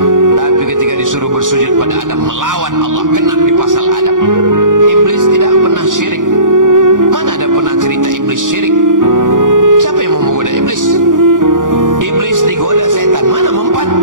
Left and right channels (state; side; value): late; left; 0.88 ms